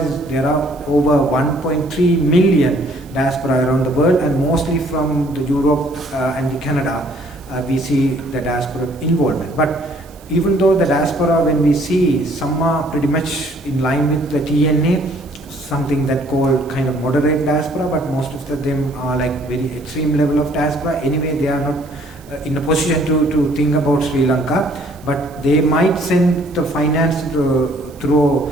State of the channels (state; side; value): noise; right; hiss, 27 dB below the sound